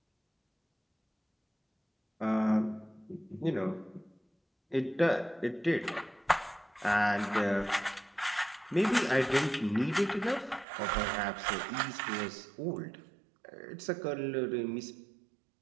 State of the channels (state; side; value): drops out; left; at 10.7 s